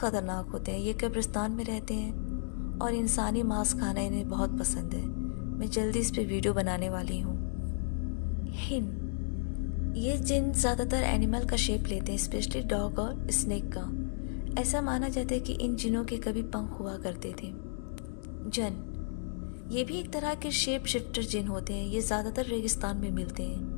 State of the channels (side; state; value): right; silent; digital silence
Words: होते हैं। ये कब्रिस्तान में रहते हैं और इंसानी मांस खाना इन्हें बहुत पसंद है। मैं जल्दी इस पे वीडियो बनाने वाली हूँ। हिन, ये जिन ज़्यादातर एनिमल का शेप लेते हैं, स्पेशली डॉग और स्नेक का। ऐसा माना जाता है कि इन जिनों के कभी पंख हुआ करते थे। जन, ये भी एक तरह के शेप शिफ्टर जिन होते हैं। ये ज़्यादातर रेगिस्तान में मिलते